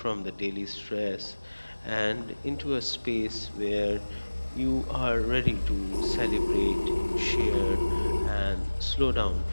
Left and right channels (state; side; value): inverted; both; correlation -1.00